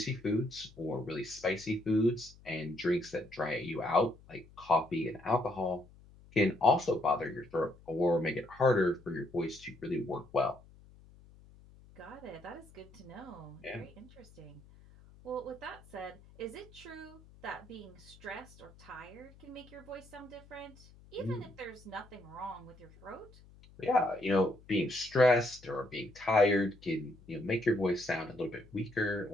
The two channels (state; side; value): noise; left; hum, 23 dB below the sound